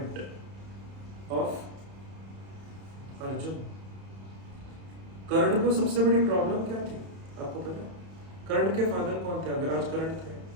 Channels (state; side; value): late; left; 31 ms